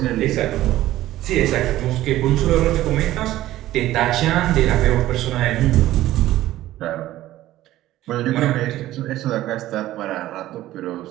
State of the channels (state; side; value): quieter; left; 14.8 dB